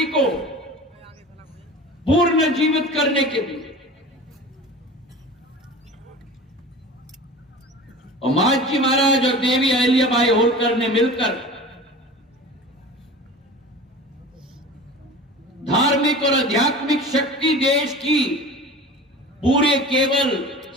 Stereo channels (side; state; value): both; normal; correlation 0.36